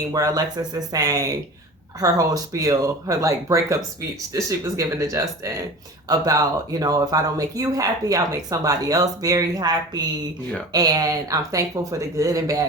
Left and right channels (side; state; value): both; normal; correlation 0.36